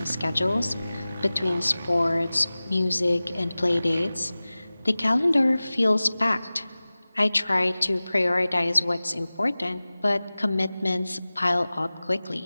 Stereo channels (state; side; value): inverted; both; correlation -0.98